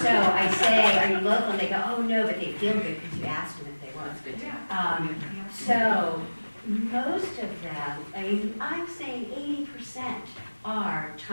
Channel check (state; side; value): inverted; both; correlation -1.00